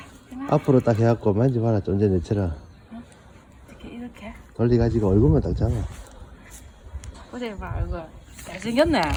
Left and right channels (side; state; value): both; identical; correlation 1.00